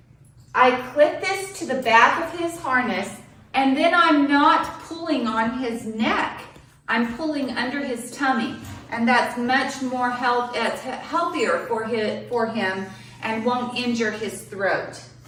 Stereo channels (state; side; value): identical; both; correlation 1.00